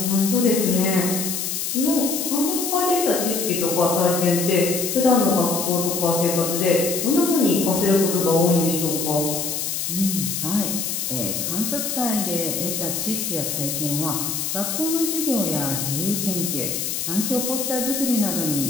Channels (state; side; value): noise; left; hiss, 2 dB below the sound